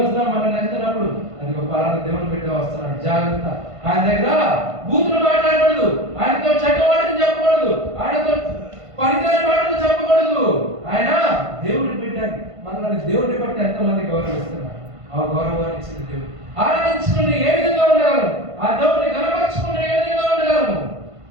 మనల్ని వెళ్తున్నప్పుడు అది గొప్ప దేవుని బిడ్డ వస్తున్నాడు, జాగ్రత్త. ఆయన దగ్గర బూతులు మాట్లాడకూడదు, ఆయనతో చెడ్డవాడిని చెప్పకూడదు, ఆయనతో పనికిరాని మాటలు చెప్పకూడదు. ఆయన దేవుని బిడ్డ. మనల్ని దేవుడిని బట్టి ఎంతమంది గౌరవిస్తున్నారు? ఆ గౌరవాన్ని ఇచ్చిన దేవుడు. ఆరాధించుకుని ఏ విధంగా ఉండగలము? ఆ దేవుడిని కనపరచుకుని ఏ విధంగా ఉండగలము?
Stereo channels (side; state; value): left; late; 1.5 ms